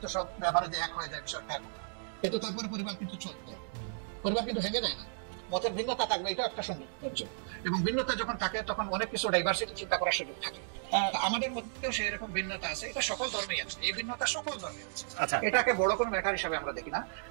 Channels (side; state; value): left; silent; digital silence